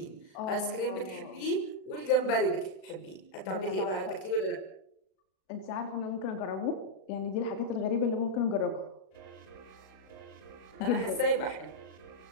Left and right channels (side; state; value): right; late; 37 ms